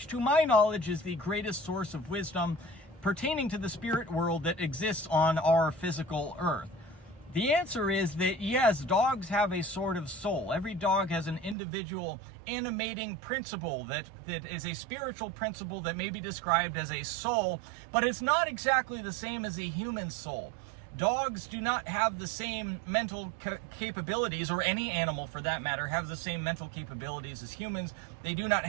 to my knowledge is the greatest source of wisdom pertaining to the spirit world that exists on our physical earth. The answer is that yes, dogs have a sort of soul. Every dog has an individual animating principle that is a spiritual principle that may be described as a soul, but it's not exactly the same as a human soul. Dogs do not have the same mental capabilities, or any animal for that matter, have the same mental capabilities as humans. They do not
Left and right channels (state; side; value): drops out; left; at 11.6 s